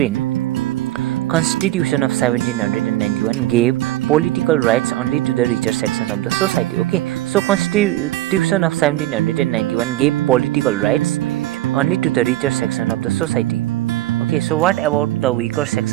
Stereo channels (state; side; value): quieter; left; 15.8 dB